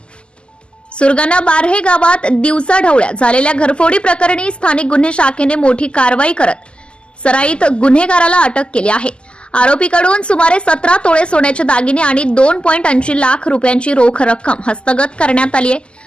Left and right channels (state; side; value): late; right; 0.051 ms